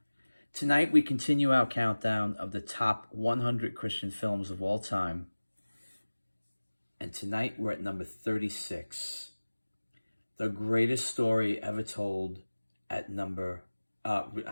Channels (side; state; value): both; inverted; correlation -1.00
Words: Tonight, we continue our countdown of the top 100 Christian films of all time. And tonight, we're at number 36. The greatest story ever told at we